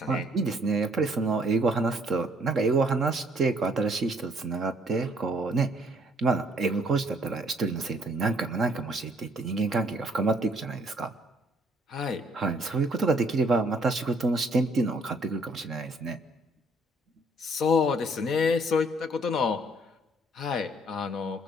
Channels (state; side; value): normal; both; correlation 0.64